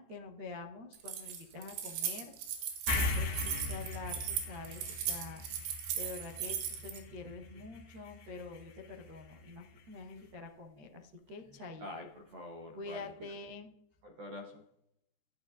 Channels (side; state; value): left; late; 14 ms